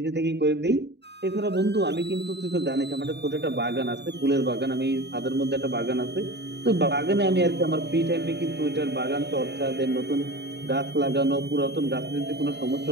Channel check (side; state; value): left; late; 0.50 ms